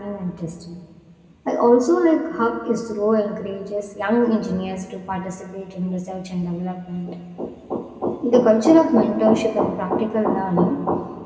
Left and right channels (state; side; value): identical; both; correlation 1.00